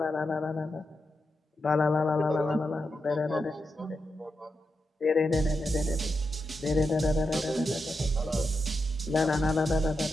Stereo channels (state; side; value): normal; both; correlation 0.87